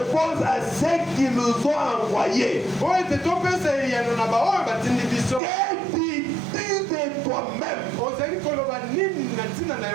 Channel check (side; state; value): left; drops out; at 5.4 s